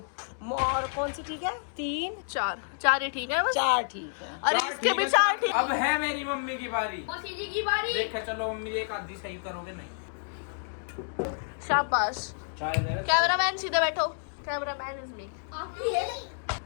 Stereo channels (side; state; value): right; silent; digital silence